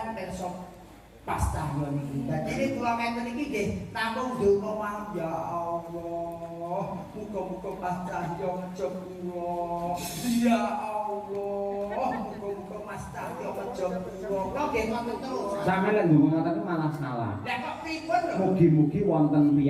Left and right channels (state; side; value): identical; both; correlation 1.00